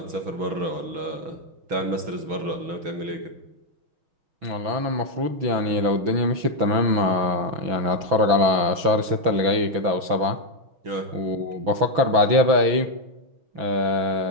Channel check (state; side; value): late; left; 6.0 ms